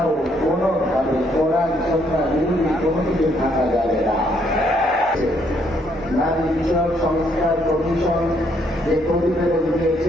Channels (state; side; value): normal; both; correlation 0.70